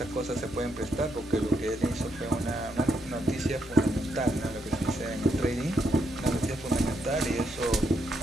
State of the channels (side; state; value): both; normal; correlation 0.78